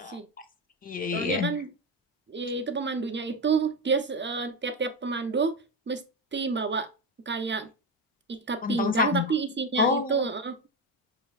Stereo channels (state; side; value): normal; both; correlation 0.14